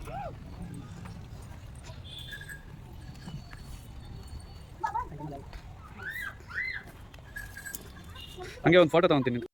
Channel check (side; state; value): both; identical; correlation 1.00